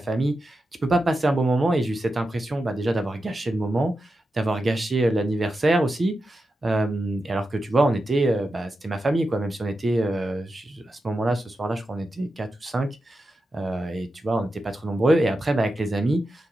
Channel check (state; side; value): normal; both; correlation 0.90